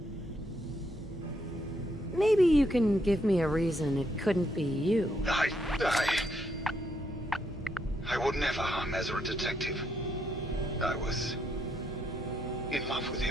Maybe you can give me a reason it couldn't be you. would never harm Ezra, Detective. I was in love with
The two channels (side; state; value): both; normal; correlation 0.76